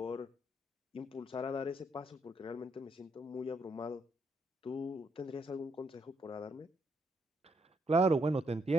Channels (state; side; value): normal; both; correlation 0.75